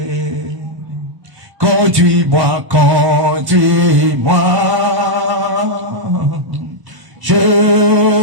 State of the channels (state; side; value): late; left; 1.1 ms